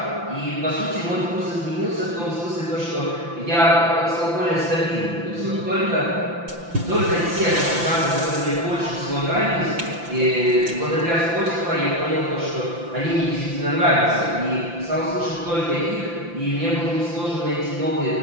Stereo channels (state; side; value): late; left; 5.9 ms